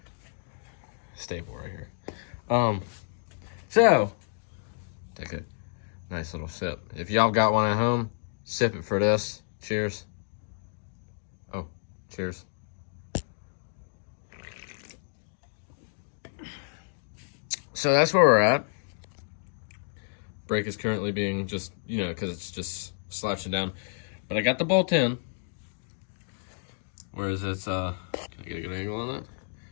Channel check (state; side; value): silent; right; digital silence